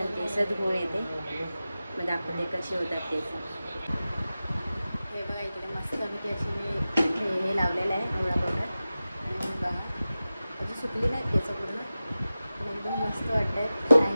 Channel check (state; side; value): inverted; both; correlation -0.95